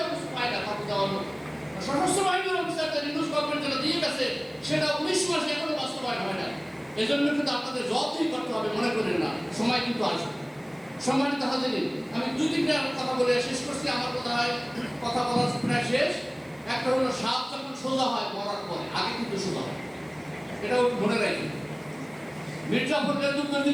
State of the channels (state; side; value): noise; right; hiss, 30 dB below the sound